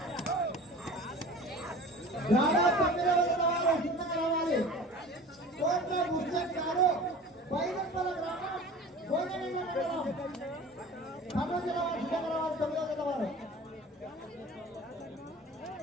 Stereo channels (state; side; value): normal; both; correlation 0.40